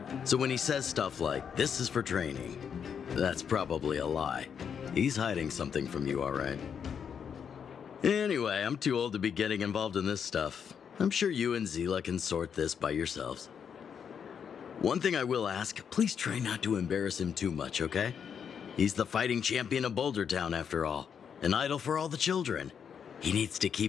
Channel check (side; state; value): right; quieter; 7.4 dB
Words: So when he says stuff like, "This is for training," that's probably a lie. He's hiding something from you, all right? Anyway, I'm too old to be getting involved in this stuff. I'm sure you and Zila can sort this by yourselves. One thing I will ask, please try not to embarrass him too much, okay? He's the fighting champion of Boulder Town, after all. An idol for all the children. He needs to